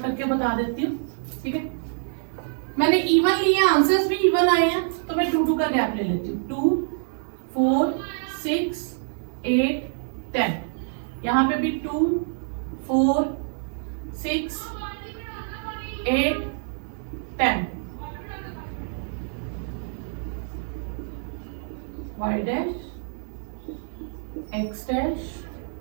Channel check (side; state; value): left; silent; 55 dB below the other